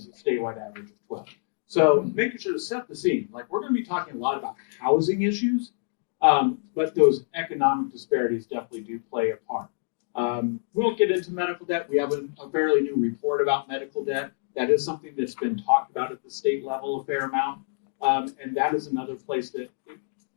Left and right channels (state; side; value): silent; right; digital silence